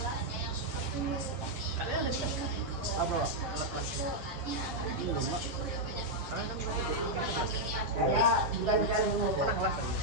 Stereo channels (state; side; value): late; left; 8.2 ms